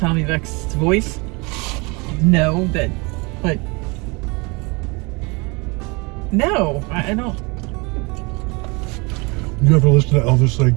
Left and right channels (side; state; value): left; quieter; 28.2 dB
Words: Vex's voice. No, but no, I don't. You ever listen to Elvis sing?